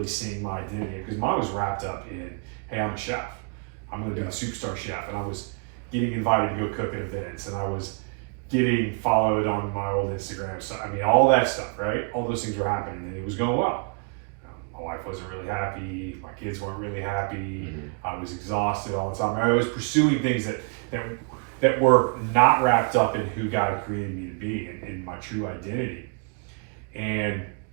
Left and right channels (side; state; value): left; quieter; 38.2 dB